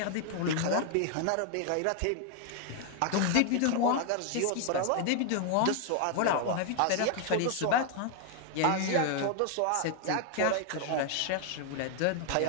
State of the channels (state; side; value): different; both; correlation 0.00